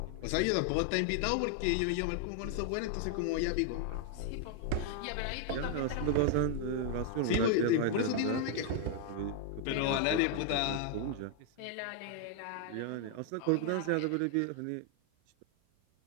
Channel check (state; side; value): different; both; correlation 0.00